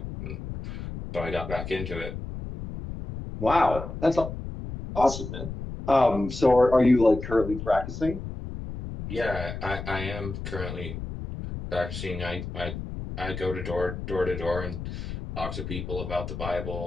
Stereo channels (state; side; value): noise; left; rumble, 8 dB below the sound